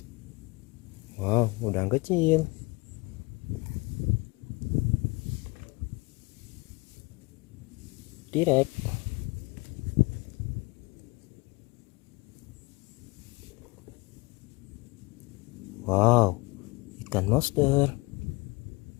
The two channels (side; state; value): right; quieter; 25.0 dB